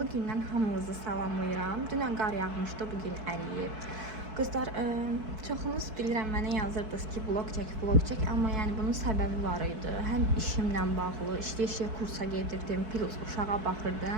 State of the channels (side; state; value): left; late; 4.6 ms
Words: gündən hamınızı salamlayıram. Dünən qar yağmışdı, bugün əriyib. Qızlar, çoxunuz bilirəm mənə yazırdınız ki, vlog çək, amma yəni bunun səbəbi var idi. Həm işimlə bağlı, işləyə kursa gedirdim, plus uşağa